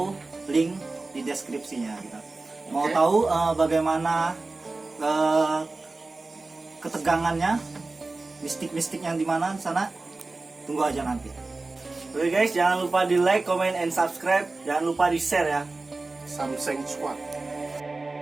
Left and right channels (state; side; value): quieter; left; 3.4 dB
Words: link di deskripsinya gitu. Mau tahu bagaimana ketegangannya, mistik-mistik yang di mana sana? Tunggu aja nanti. Oke guys, jangan lupa di like, comment, and subscribe. Jangan lupa di share ya. Samseng Squad.